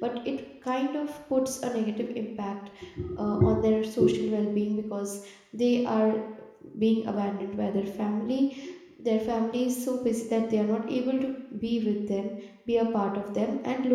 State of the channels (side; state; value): both; identical; correlation 1.00